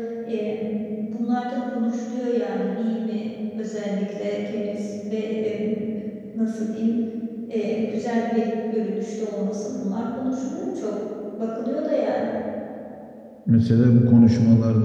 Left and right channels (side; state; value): both; identical; correlation 1.00